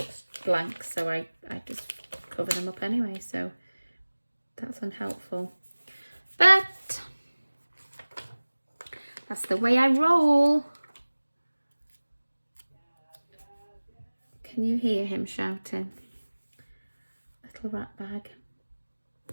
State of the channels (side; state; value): both; inverted; correlation -1.00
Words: blank, so I just cover them up anyway. So that's unhelpful, but that's the way I roll. Can you hear him shouting? Little rat bag.